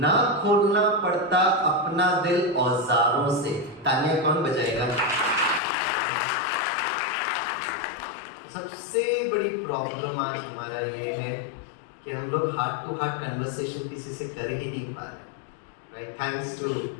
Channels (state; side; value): drops out; right; at 5.6 s